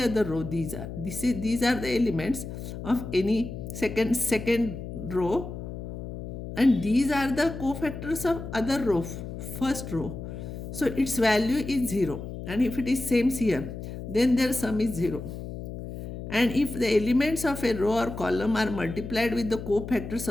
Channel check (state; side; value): noise; left; hum, 9 dB below the sound